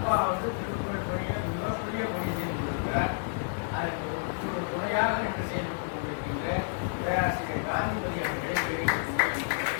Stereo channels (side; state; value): right; silent; digital silence